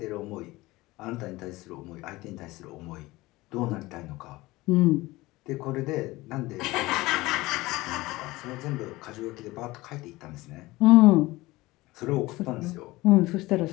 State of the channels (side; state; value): right; quieter; 19.9 dB